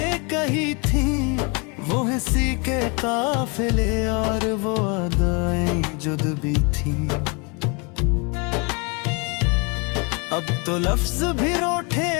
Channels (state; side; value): quieter; right; 31.8 dB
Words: कही थी, वो हंसी के काफिले और वो अदाएं जुद्बी थी। अब तो लफ्ज भी रूठे